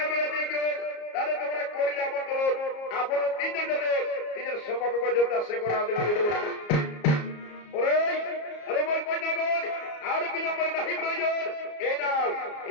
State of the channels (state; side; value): late; right; 34 ms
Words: তাহলে তোমরা করিলে আমন্ত্রণ আপনার 3 জন নিজের সমগ্র যোদ্ধা সে করা দেবে আরে বল কন্যাগণ আর বিলম্বনে নাহি প্রয়োজন